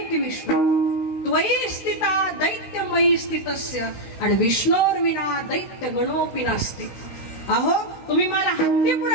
विष्णुर, त्वयि स्थिता दैत्यमयी स्थितस्य आणि विष्णोर विना दैत्य गणोपी नास्ति. अहो तुम्ही मला हत्ती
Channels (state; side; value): late; right; 16 ms